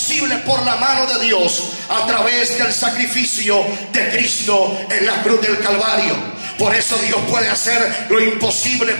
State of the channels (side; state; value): both; inverted; correlation -1.00